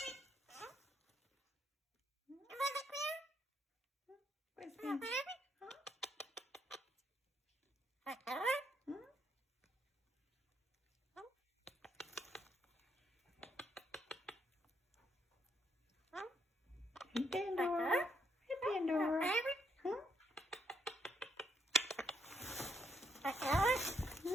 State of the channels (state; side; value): normal; both; correlation 0.74